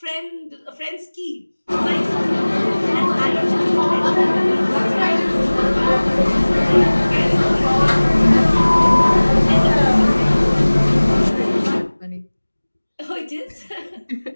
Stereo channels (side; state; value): both; inverted; correlation -1.00